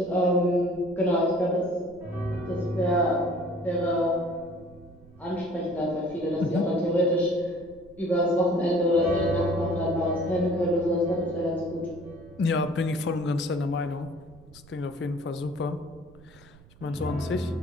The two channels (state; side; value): noise; right; rumble, 24 dB below the sound